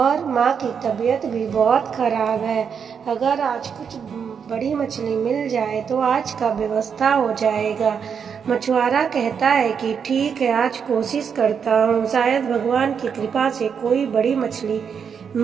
माँ की तबीयत भी बहुत ख़राब है। अगर आज कुछ बड़ी मछली मिल जाए तो आज का व्यवस्था हो जाएगा। मछुआरा कहता है कि ठीक है, आज कोशिश करता हूँ, शायद भगवान की कृपा से कोई बड़ी मछली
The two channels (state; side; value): quieter; left; 6.9 dB